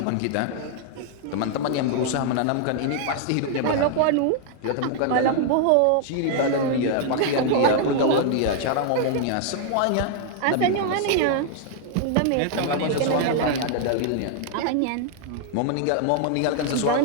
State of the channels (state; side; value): different; both; correlation 0.00